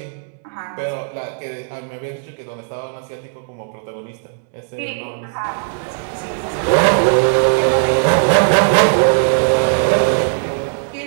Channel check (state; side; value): silent; left; digital silence